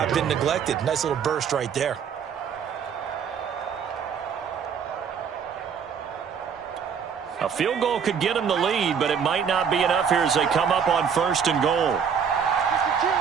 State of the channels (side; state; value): left; quieter; 7.1 dB